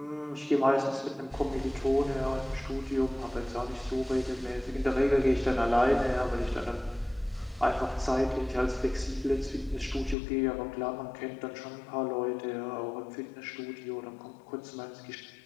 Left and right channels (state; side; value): drops out; right; at 10.2 s